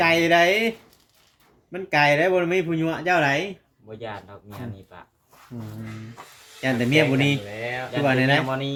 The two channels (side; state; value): both; identical; correlation 1.00